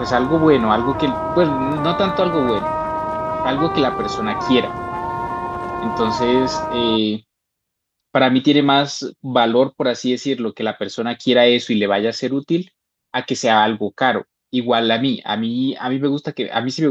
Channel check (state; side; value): identical; both; correlation 1.00